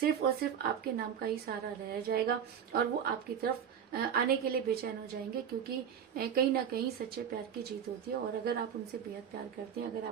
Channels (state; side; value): quieter; left; 8.3 dB